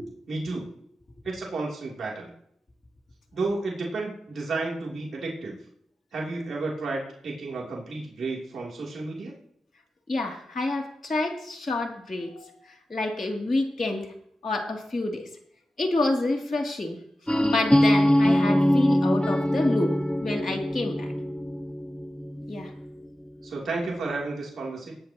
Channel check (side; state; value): both; normal; correlation 0.93